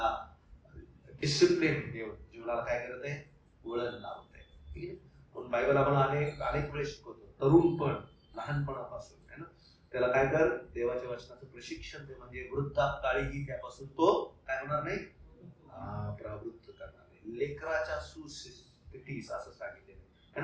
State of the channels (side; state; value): both; identical; correlation 1.00